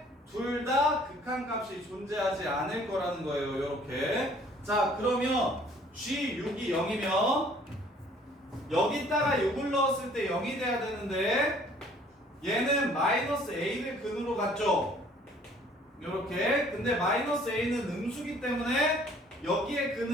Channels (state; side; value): normal; both; correlation 0.56